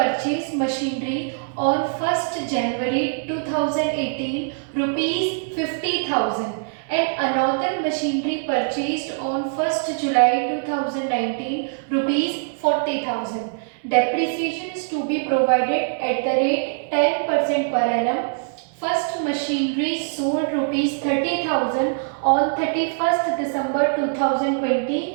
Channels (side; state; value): left; silent; digital silence